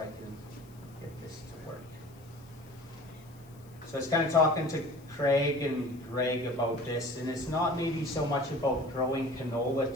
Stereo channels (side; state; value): left; noise; hiss, 27 dB below the sound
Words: can get this to work. So I was kind of talking to Craig and Greg about this, and it's not maybe so much about growing